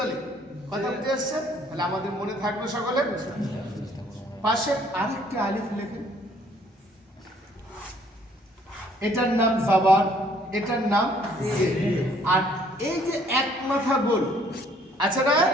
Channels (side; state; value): both; normal; correlation 0.61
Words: কথা বুঝে এসছে? তাহলে আমাদের মনে থাকবে সকলে। পাশে আরেকটি আলিফ লেখেন, এটার নাম জাবার, এটার নাম জের। আর এই যে এক মাথা গোল আছে না,